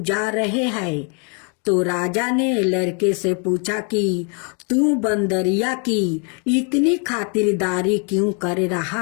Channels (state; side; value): quieter; right; 37.5 dB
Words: जा रहे हैं। तो राजा ने लड़के से पूछा कि तू बंदरिया की इतनी खातिरदारी क्यों कर